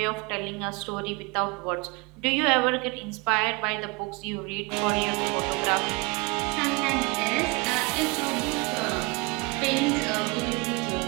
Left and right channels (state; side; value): quieter; left; 27.6 dB